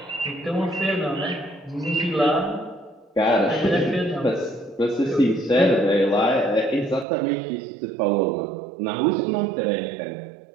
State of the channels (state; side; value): drops out; left; at 7.1 s